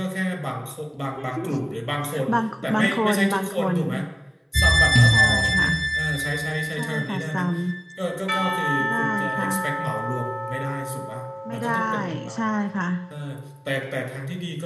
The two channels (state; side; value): identical; both; correlation 1.00